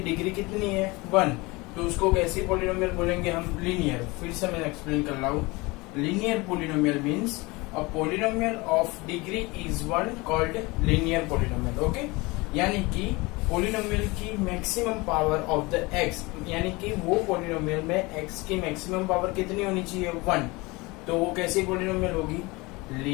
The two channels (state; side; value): quieter; right; 23.9 dB